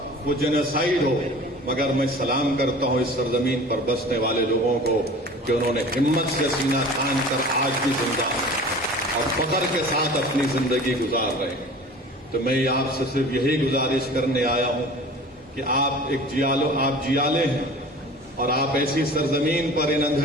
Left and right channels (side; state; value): both; normal; correlation 0.41